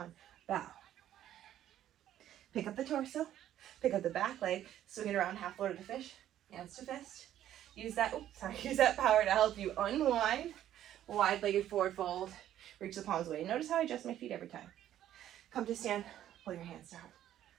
Bow. Pick up the torso. Pick up the back leg. Swing it around half load of the fish. Hands to fist. Use that power to help you unwind. Wide-legged forward fold. Reach the palms away. Notice how I adjust my feet every time. Come to stand. Pull your hands to heart.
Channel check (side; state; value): left; quieter; 11.8 dB